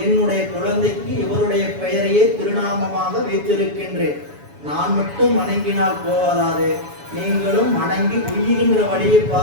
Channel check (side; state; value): left; late; 7.1 ms